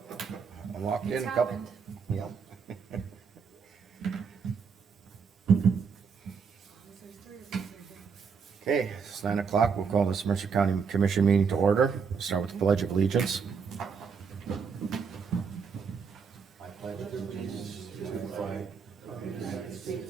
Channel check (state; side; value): quieter; left; 5.9 dB